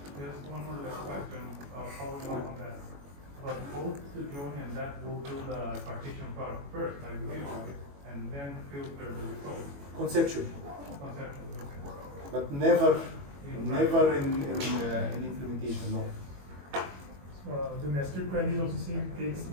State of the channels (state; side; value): late; left; 21 ms